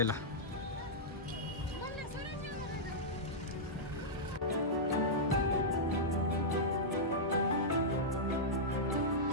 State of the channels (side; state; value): both; normal; correlation -0.10